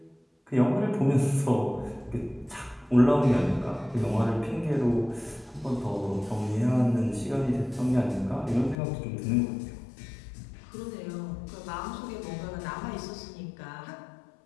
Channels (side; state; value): right; drops out; at 8.8 s